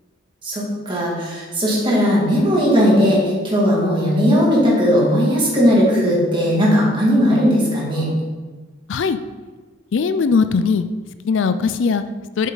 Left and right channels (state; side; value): normal; both; correlation 0.63